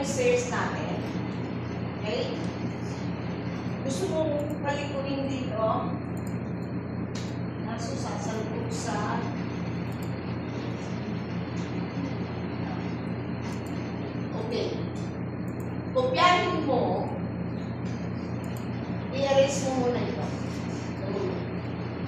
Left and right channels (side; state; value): both; identical; correlation 1.00